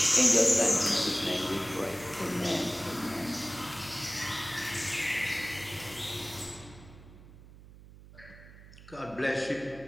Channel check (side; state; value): right; noise; hum, 19 dB below the sound